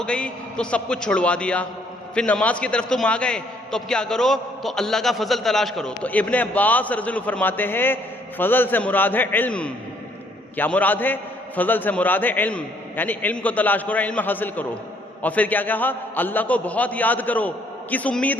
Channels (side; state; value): both; normal; correlation 0.66